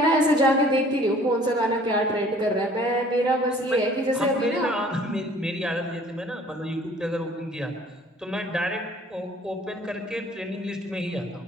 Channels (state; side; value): normal; both; correlation 0.54